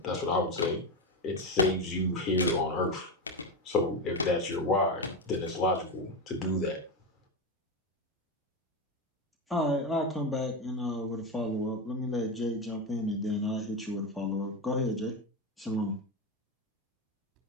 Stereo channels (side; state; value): both; normal; correlation 0.14